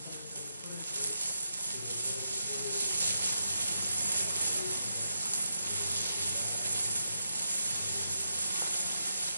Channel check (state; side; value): inverted; both; correlation -0.83